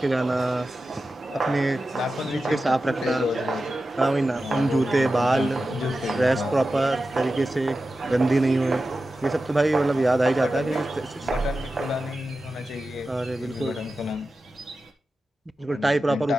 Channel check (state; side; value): normal; both; correlation 0.93